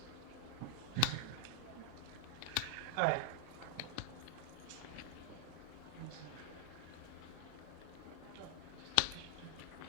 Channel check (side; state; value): both; different; correlation 0.00